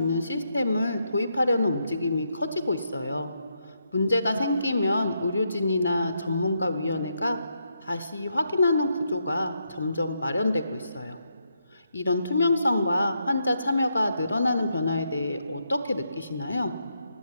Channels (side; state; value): both; inverted; correlation -0.80